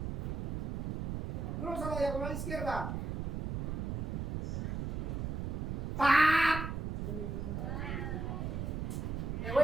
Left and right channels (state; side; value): noise; right; rumble, 1 dB below the sound